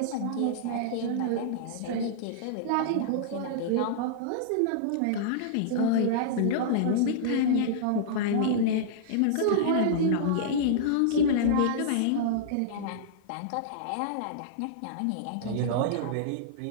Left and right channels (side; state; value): both; different; correlation -0.02